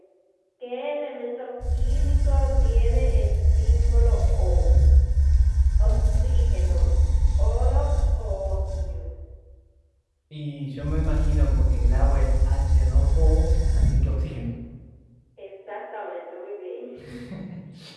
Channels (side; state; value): both; identical; correlation 1.00